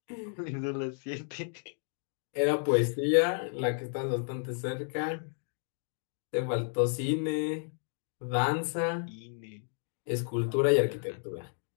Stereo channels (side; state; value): right; silent; 56 dB below the other